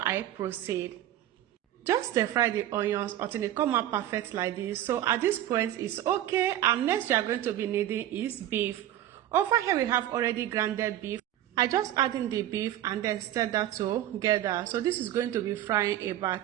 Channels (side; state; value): left; quieter; 12.9 dB